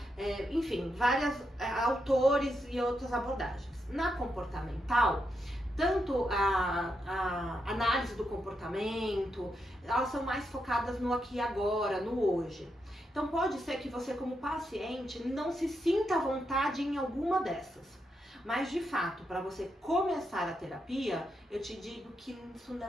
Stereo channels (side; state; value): both; normal; correlation 0.83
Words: enfim, vários autores e outras abordagens. Na comportamental, tanto a análise do comportamento, elas são mais focadas no aqui e agora, no hoje. Então pode ser que você como paciente não se sinta à vontade em alguma dessas. Mas de fato, para você começar a terapia, eu te digo que isso